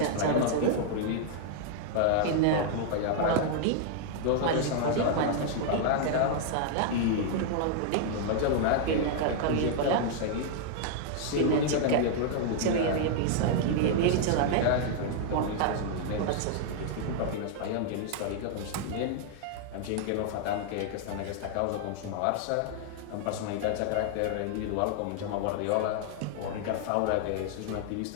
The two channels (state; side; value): different; both; correlation -0.01